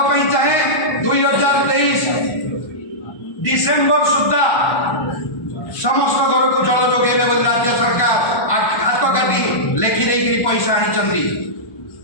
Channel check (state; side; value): late; right; 1.2 ms